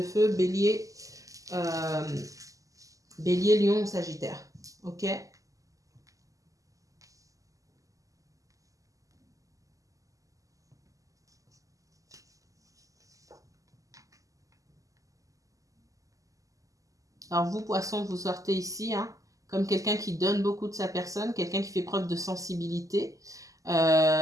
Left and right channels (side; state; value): left; late; 0.16 ms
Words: feu, bélier, bélier, lion ou sagittaire. Ok? Alors vous, poisson, vous sortez ici, hein, comme quelqu'un qui donne beaucoup de sa personne, quelqu'un qui fait preuve de sensibilité. Pour